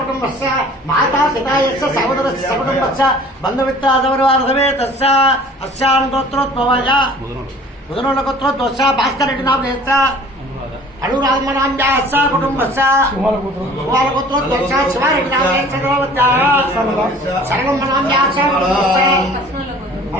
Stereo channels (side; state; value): both; normal; correlation 0.49